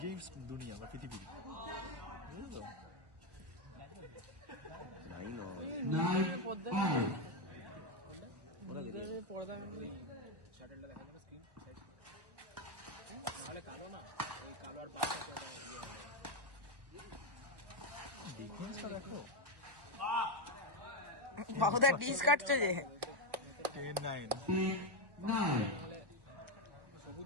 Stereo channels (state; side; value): late; left; 1.1 ms